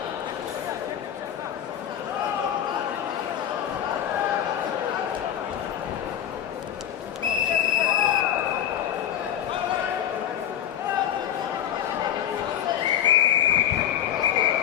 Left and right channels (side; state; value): right; quieter; 10.2 dB